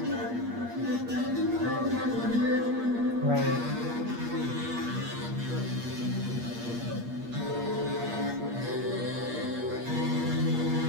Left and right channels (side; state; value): left; late; 8.5 ms